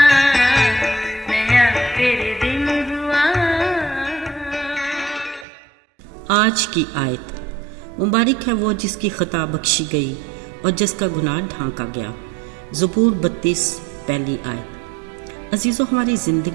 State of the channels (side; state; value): left; drops out; at 5.5 s